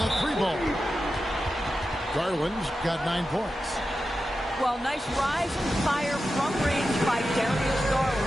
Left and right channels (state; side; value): normal; both; correlation 0.91